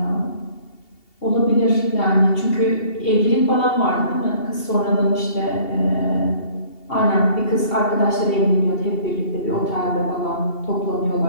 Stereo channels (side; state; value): right; late; 2.8 ms